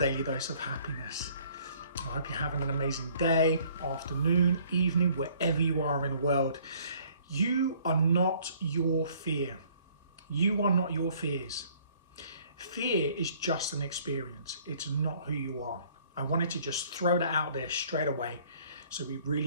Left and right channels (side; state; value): both; inverted; correlation -0.58